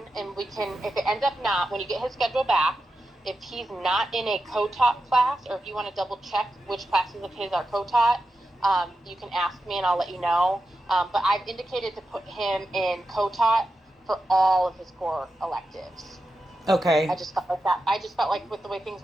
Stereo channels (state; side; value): normal; both; correlation 0.90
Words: and we can, if it ends up not, when you get his schedule back, if he's not in a co-taught class, or if you want to double check which classes of his are co-taught, you can ask me and I'll let you know. But I've indicated to put him in co-taught for all of his core electives. I Okay. just felt like that. I just felt like with the way things